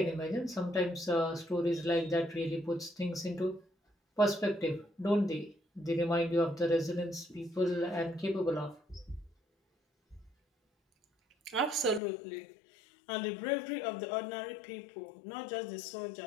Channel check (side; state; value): right; drops out; at 12.0 s